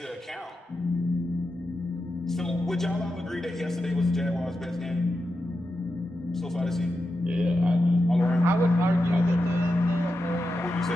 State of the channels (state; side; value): normal; both; correlation 0.89